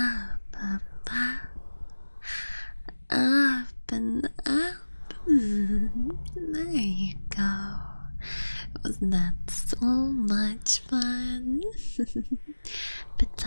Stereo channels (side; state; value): both; inverted; correlation -1.00